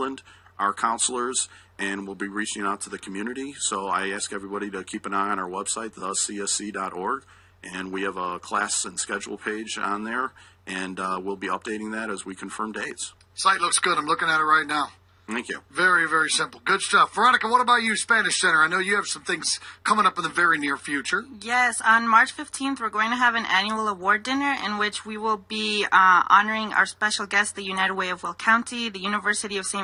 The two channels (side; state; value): both; identical; correlation 1.00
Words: our counselors, and we'll be reaching out to the community. So I ask everybody to keep an eye on our website, thecsc.org, and we have a class and schedule page on there, and we'll be updating that as we confirm dates. Site looks good. I'm looking at it right now. Thank you. Very, very simple. Good stuff. Veronica, what about you, Spanish Center? I know you have some things coming up in the very near future. Yes, on March 15th, we're going to have an annual award dinner in which we will be honoring our special guests, the United Way of Will County, the University of